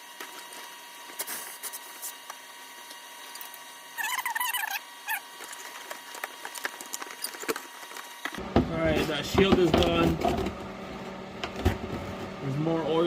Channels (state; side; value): identical; both; correlation 1.00